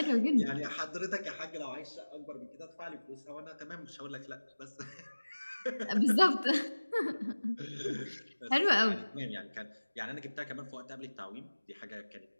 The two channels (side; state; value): both; inverted; correlation -1.00